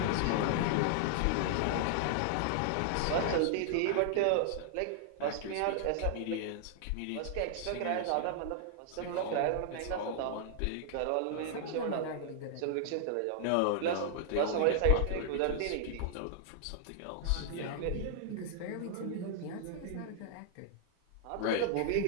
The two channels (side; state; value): both; different; correlation -0.01